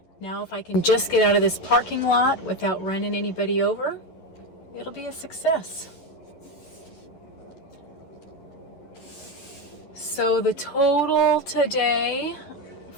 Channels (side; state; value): right; late; 11 ms